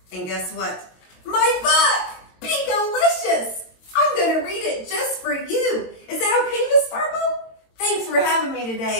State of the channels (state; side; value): late; right; 22 ms